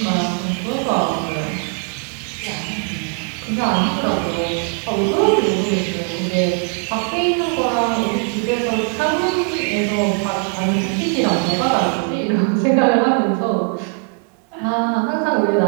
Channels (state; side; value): quieter; left; 38.3 dB